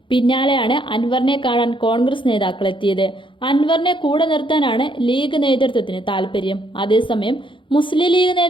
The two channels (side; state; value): right; late; 0.24 ms